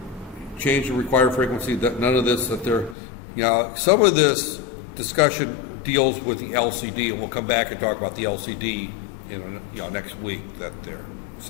change the required frequency. That none of this that there, some of this discussion deals with the LCD, and we'll come back and talk about the LCD in next week. That there.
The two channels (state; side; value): drops out; right; at 3.0 s